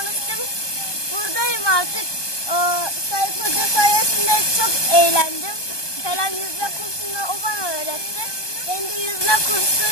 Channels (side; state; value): right; late; 1.2 ms